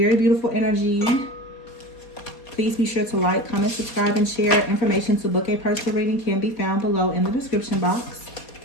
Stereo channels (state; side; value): late; right; 4.2 ms